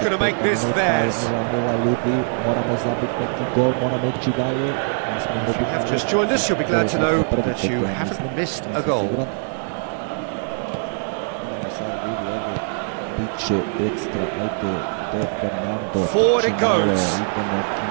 minuta, 0-0 ljudi, moramo zabiti neki gol, moramo ići dalje. Have just joined us, you'll be glad to know that you haven't missed a goal. Idemo sad vidi ovdje, bit će ekstra, ajde, De Fernando, forward it goes. Idemo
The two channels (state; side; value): silent; left; 64 dB below the other